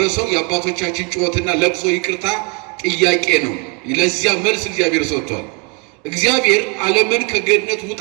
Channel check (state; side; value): quieter; left; 33.4 dB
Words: የአባቶቻችን ጩኸትና ለቅሶ ይቅርታ ጥያቄ ነው። ለዚያ መልስ እግዚአብሔር ሰጥቷል። እግዚአብሔር ዓለምን ከገነት